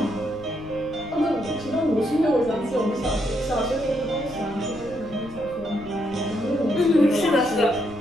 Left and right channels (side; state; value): left; noise; rumble, 18 dB below the sound